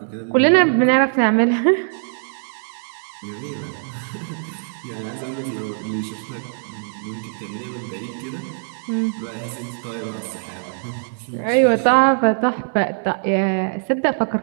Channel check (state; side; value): silent; left; digital silence